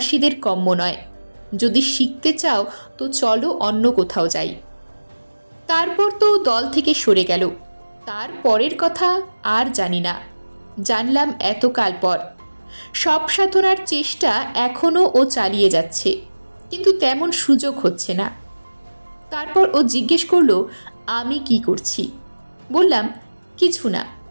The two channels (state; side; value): inverted; both; correlation -1.00